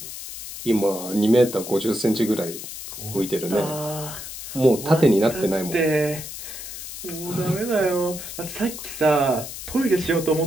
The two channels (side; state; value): left; noise; hiss, 10 dB below the sound